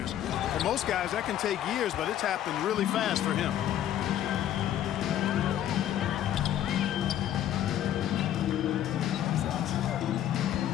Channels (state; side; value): quieter; right; 11.4 dB